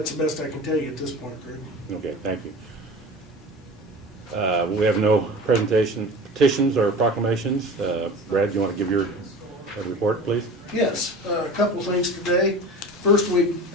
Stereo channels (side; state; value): both; normal; correlation 0.36